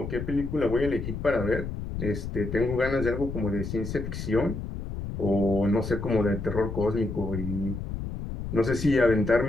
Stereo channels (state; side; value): noise; left; rumble, 6 dB below the sound